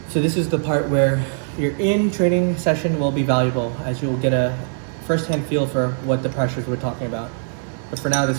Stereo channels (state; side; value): silent; left; digital silence